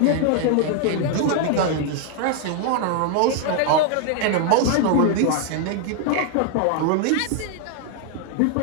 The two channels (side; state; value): both; different; correlation 0.00